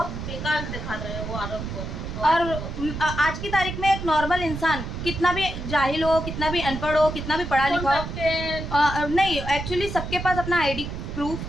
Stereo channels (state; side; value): noise; right; rumble, 6 dB below the sound